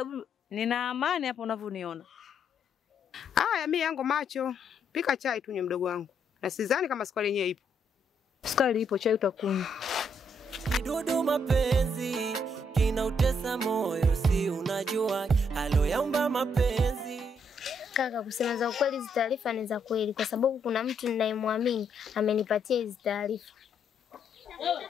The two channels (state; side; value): normal; both; correlation 0.74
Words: nina amani hapo unavyoniona. Mimi yangu macho. Pika chai tu mdogo wangu. Na sidhani kama sukari yenyewe ipo. Sukari ipo, chai utakunywa. Kidudu mapenzi kinautesa moyo, si unajua halo yaumba mapenzi. Kaka, kusema za ukweli hizi taarifa ni za kweli kwa sababu kuna mtu ninayemwamini amenipatia hizi taarifa.